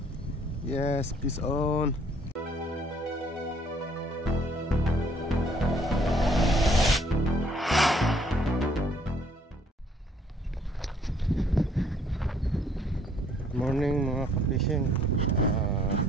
Yes, peace on. Morning mga ka-fishing.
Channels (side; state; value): both; normal; correlation 0.63